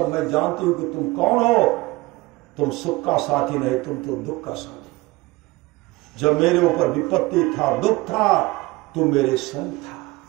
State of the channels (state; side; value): quieter; left; 21.6 dB